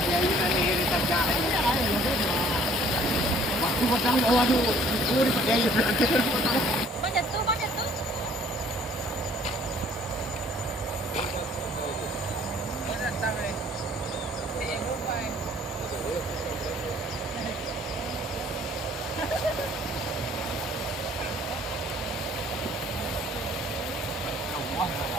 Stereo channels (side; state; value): both; normal; correlation 0.57